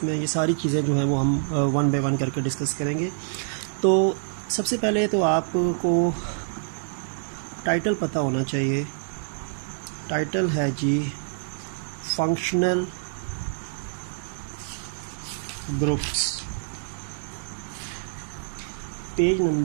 ये सारी चीज़ें जो हैं वो हम वन बाय वन करके डिस्कस करेंगे। तो सबसे पहले तो आपको टाइटल पता होना चाहिए। टाइटल है जी फंक्शनल ग्रुप्स। पेज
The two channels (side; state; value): left; silent; digital silence